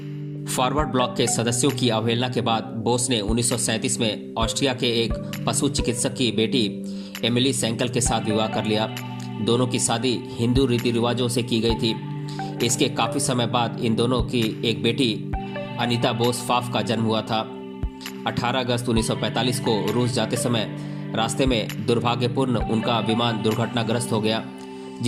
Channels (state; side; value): identical; both; correlation 1.00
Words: फॉरवर्ड ब्लॉक के सदस्यों की अवहेलना के बाद बोस ने 1937 में ऑस्ट्रिया के एक पशु चिकित्सक की बेटी एमिली सेंकल के साथ विवाह कर लिया। दोनों की शादी हिंदू रीति रिवाजों से की गई थी। इसके काफ़ी समय बाद इन दोनों की एक बेटी अनीता बोस फाफ का जन्म हुआ था। 18 अगस्त 1945 को रूस जाते समय रास्ते में दुर्भाग्यपूर्ण उनका विमान दुर्घटनाग्रस्त हो गया,